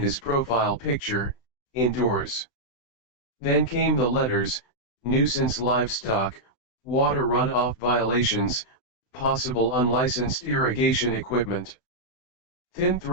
profile picture, indoors. Then came the letters: nuisance livestock, water runoff violations, possible unlicensed irrigation equipment. Thin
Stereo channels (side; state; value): right; late; 16 ms